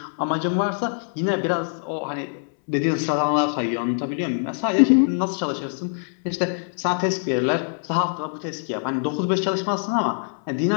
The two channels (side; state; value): right; silent; 63 dB below the other